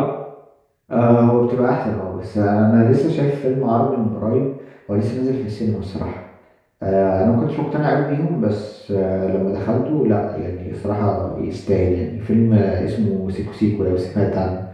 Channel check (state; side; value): identical; both; correlation 1.00